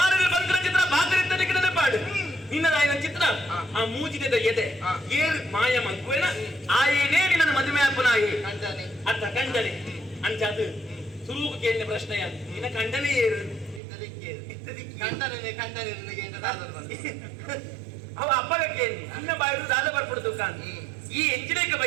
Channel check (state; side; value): drops out; left; at 13.8 s